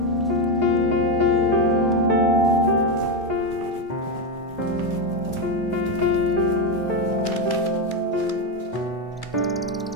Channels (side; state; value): both; normal; correlation 0.09